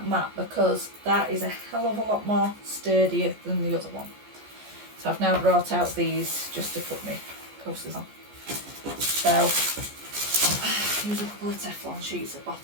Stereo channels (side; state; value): left; late; 14 ms